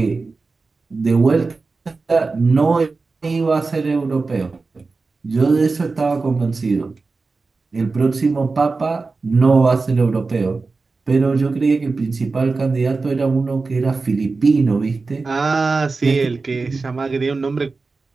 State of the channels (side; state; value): left; quieter; 4.0 dB